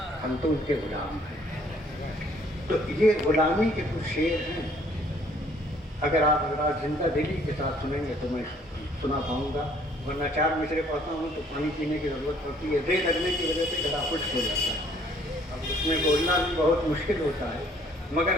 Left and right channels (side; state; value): both; normal; correlation 0.61